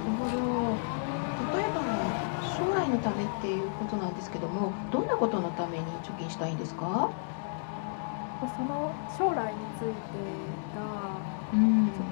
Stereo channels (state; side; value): silent; right; digital silence